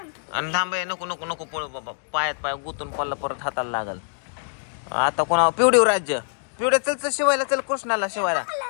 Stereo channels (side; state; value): right; silent; 62 dB below the other